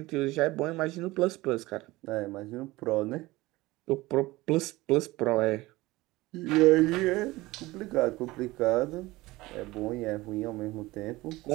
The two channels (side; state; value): left; quieter; 19.7 dB